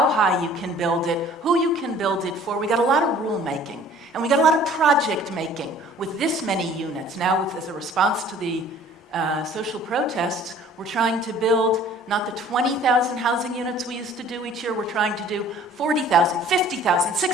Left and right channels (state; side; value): normal; both; correlation 0.51